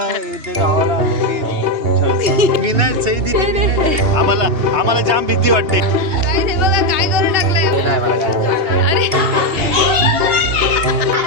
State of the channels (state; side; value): late; left; 2.8 ms